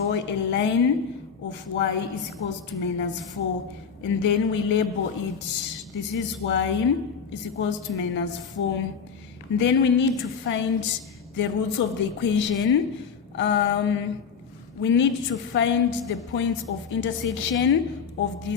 a line of y is equals to minus 4. And then we label it. This is y is equals to minus 4. And then we need to find the roots of the equation. We need to find the points of intersection of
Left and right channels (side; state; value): right; quieter; 6.4 dB